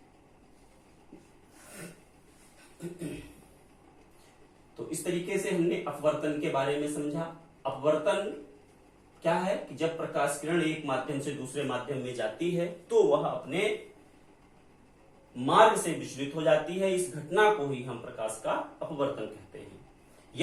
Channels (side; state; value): both; identical; correlation 1.00